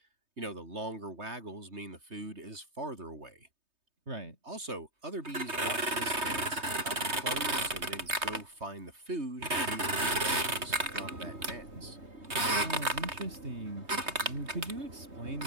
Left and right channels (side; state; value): left; late; 3.2 ms